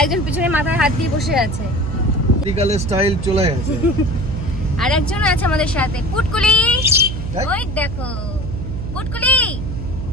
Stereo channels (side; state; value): right; noise; hum, 6 dB below the sound